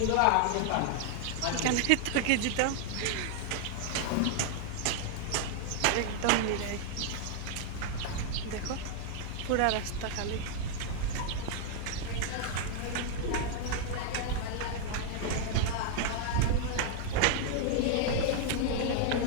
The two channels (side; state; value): both; different; correlation 0.00